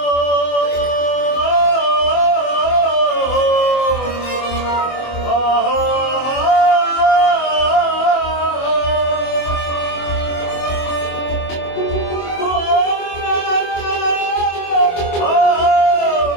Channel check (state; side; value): late; right; 24 ms